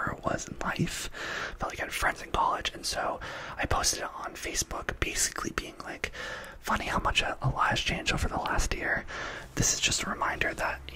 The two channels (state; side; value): identical; both; correlation 1.00